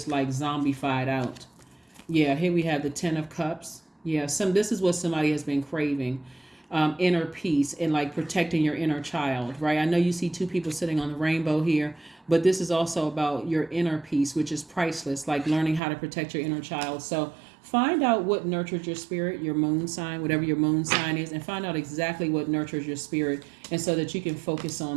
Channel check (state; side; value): drops out; left; at 15.8 s